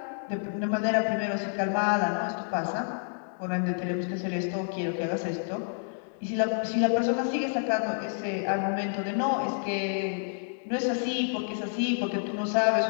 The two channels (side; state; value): right; silent; digital silence